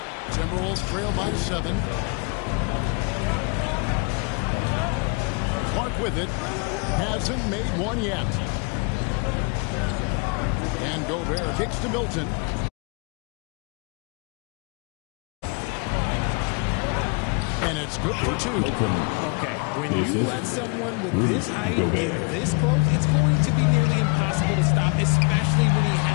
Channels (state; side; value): quieter; right; 32.8 dB